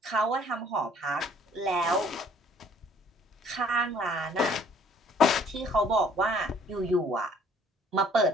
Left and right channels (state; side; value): normal; both; correlation 0.58